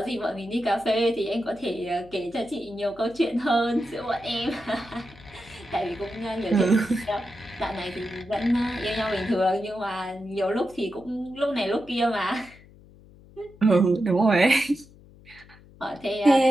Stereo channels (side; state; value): left; noise; hum, 23 dB below the sound